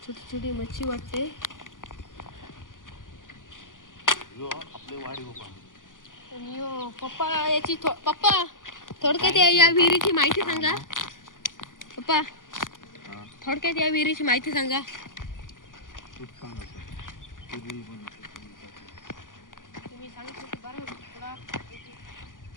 छोटी छोटी मच्छी वाटते. आणि पप्पा याची पप्पा थोडक्यात या विहिरीची माहिती सांगा. पप्पा थोडक्यात या विहिरीची माहिती सांगा. तुम्ही सांगितलं की बरं थोडा.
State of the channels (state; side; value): late; right; 0.88 ms